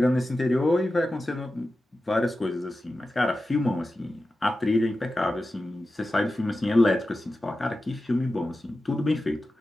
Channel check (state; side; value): normal; both; correlation 0.93